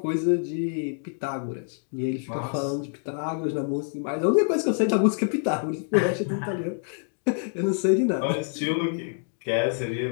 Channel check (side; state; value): right; silent; 61 dB below the other